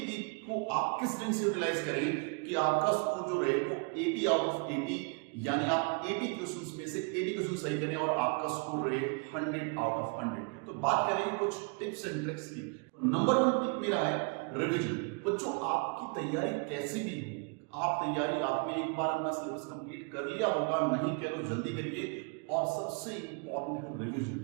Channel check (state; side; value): quieter; left; 34.8 dB